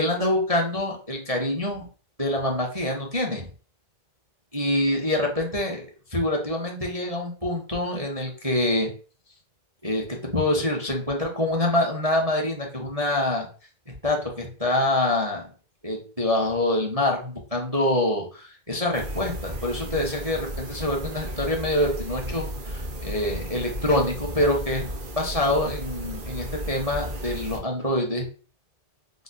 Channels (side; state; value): left; late; 1.7 ms